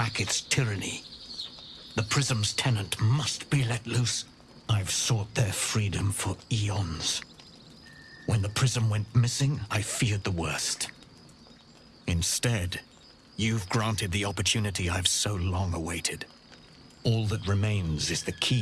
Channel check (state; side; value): identical; both; correlation 1.00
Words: tyranny. The Prism's tenant must be let loose. I've sought their freedom for eons. When the Prism went missing, I feared the worst. Instead, you've granted the opportunity I've so long awaited. All that remains is the